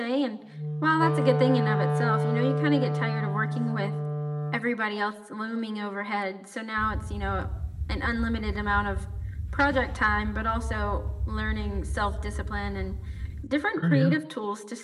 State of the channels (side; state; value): both; identical; correlation 1.00